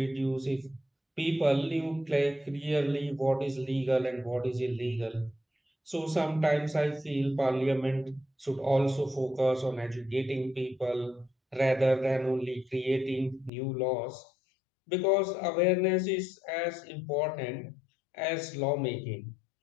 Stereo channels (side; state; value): right; drops out; at 13.5 s